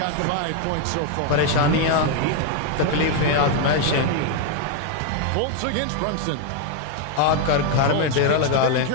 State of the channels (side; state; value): both; different; correlation 0.01